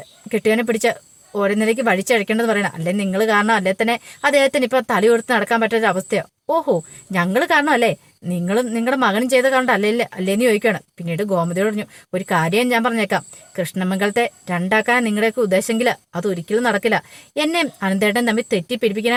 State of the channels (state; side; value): identical; both; correlation 1.00